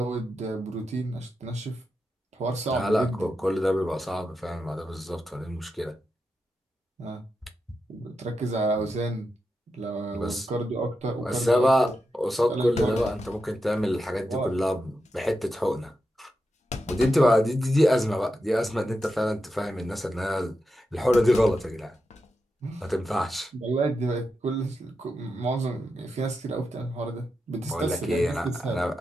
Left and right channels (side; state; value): both; normal; correlation 0.88